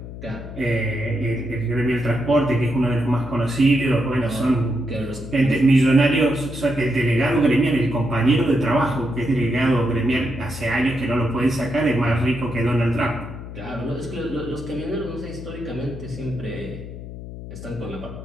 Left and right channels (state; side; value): noise; left; hum, 11 dB below the sound